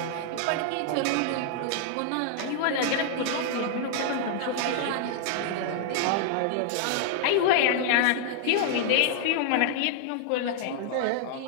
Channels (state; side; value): different; both; correlation -0.01